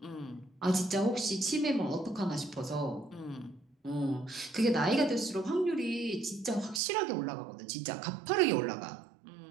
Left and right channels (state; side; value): drops out; left; at 6.8 s